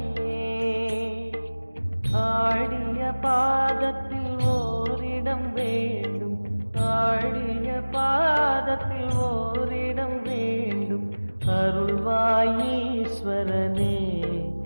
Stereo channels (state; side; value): inverted; both; correlation -1.00